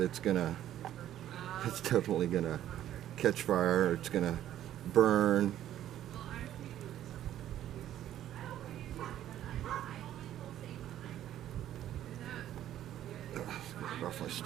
definitely gonna catch fire. It's gonna burn. Get it off my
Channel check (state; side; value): quieter; left; 12.0 dB